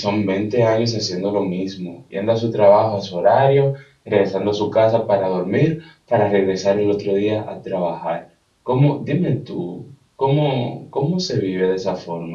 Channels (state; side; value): identical; both; correlation 1.00